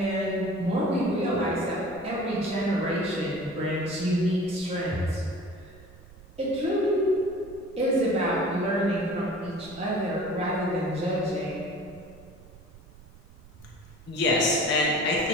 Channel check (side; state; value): right; noise; rumble, 21 dB below the sound